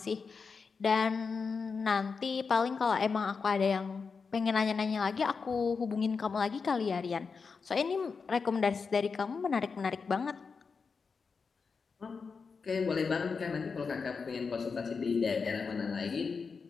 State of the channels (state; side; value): quieter; right; 5.2 dB